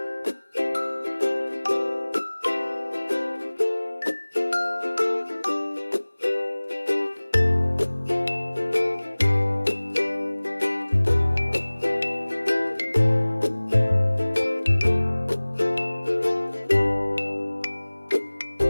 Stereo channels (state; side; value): inverted; both; correlation -1.00